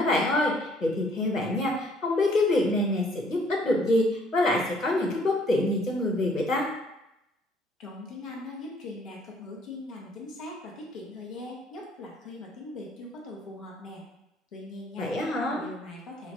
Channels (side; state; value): both; normal; correlation 0.62